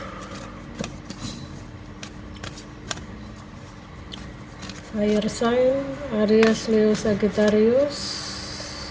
Fire sign Aries, Leo, Sagittarius.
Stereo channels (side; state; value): both; identical; correlation 1.00